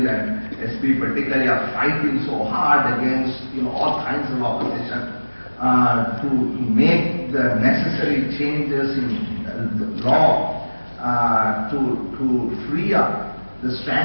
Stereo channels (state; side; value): inverted; both; correlation -1.00